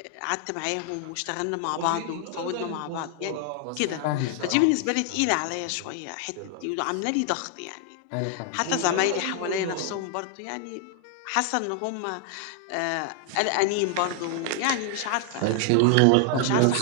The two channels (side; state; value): both; different; correlation 0.00